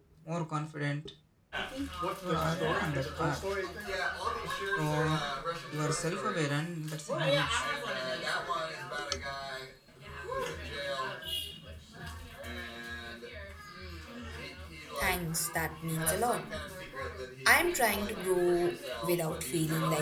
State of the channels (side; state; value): both; identical; correlation 1.00